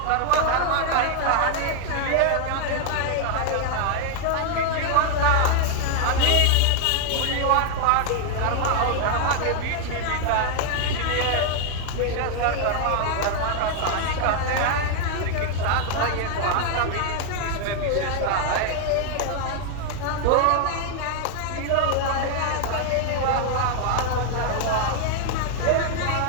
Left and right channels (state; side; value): different; both; correlation 0.00